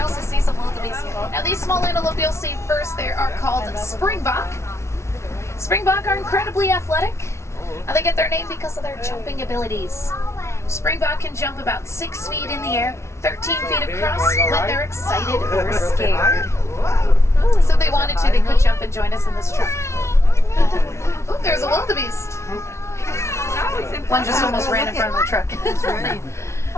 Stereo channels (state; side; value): late; right; 0.13 ms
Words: also see some wildebeest. wildebeest. Now these small antelope you'll see first there are called springbok. Springbok are incredibly athletic. They get their name because of their jumping abilities. Springbok can jump about 6 feet in the air, 13 feet across when they're excited or scared. So if they wanted to, they could jump and join us in this truck. Oh, there's a wildebeest. One just almost ran in front of the truck.